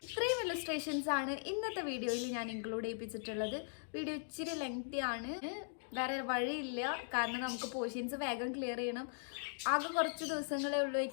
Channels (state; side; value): silent; right; digital silence